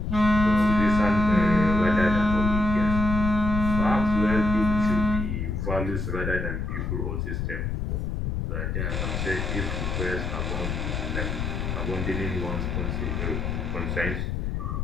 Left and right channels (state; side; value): noise; left; rumble, 2 dB below the sound